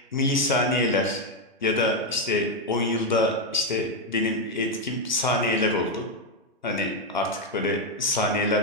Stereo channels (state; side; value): normal; both; correlation 0.03